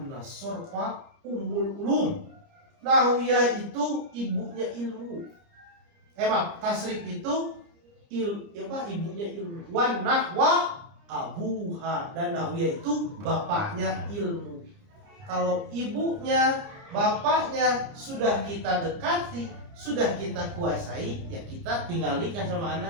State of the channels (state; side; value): late; left; 30 ms